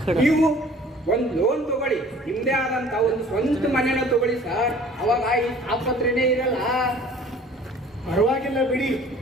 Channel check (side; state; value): both; normal; correlation 0.49